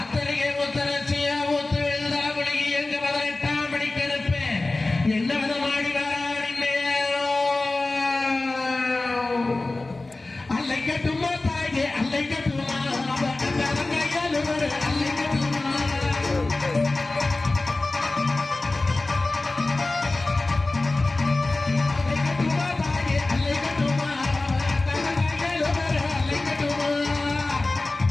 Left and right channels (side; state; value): right; quieter; 3.1 dB